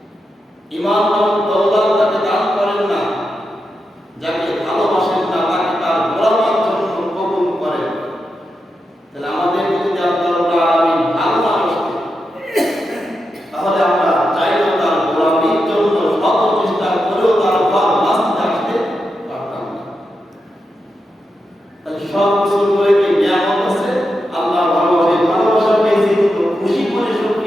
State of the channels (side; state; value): both; normal; correlation 0.87